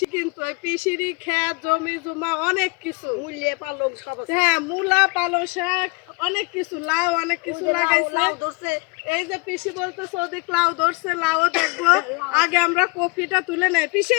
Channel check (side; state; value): right; quieter; 27.9 dB